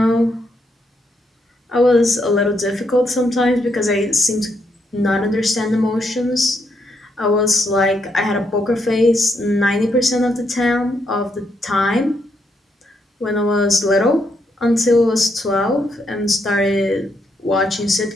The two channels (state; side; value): normal; both; correlation 0.77